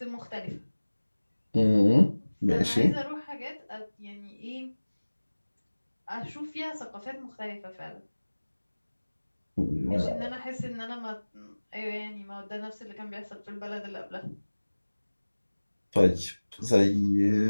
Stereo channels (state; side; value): inverted; both; correlation -1.00